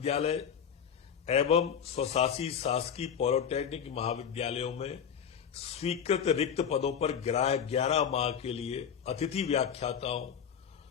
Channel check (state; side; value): quieter; right; 7.8 dB